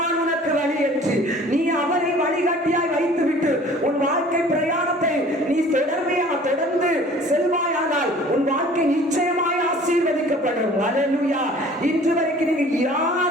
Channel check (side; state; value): both; normal; correlation 0.49